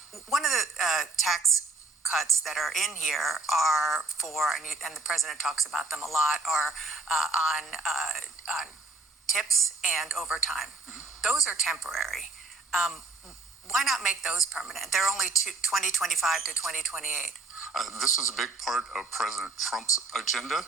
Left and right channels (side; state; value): left; quieter; 3.4 dB